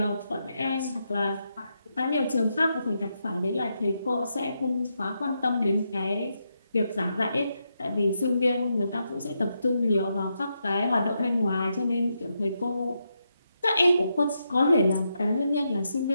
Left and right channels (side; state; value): both; inverted; correlation -0.83